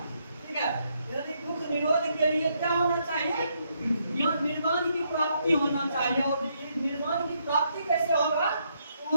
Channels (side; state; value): both; inverted; correlation -0.75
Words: ठीक है, यानी दुख निरोध के लिए क्या होना चाहिए? निर्माण की प्राप्ति होना चाहिए। और निर्माण की प्राप्ति कैसे होगा?